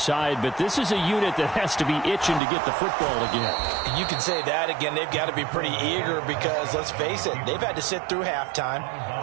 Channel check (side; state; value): left; drops out; at 2.4 s